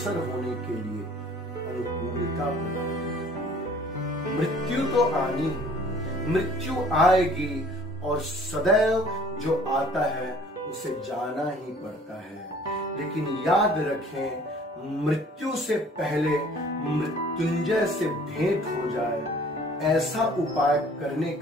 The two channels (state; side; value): normal; both; correlation 0.53